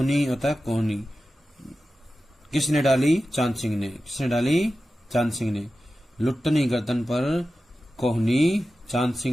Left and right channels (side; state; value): both; normal; correlation 0.93